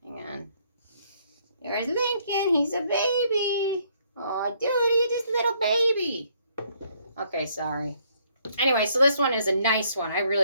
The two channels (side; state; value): both; inverted; correlation -0.67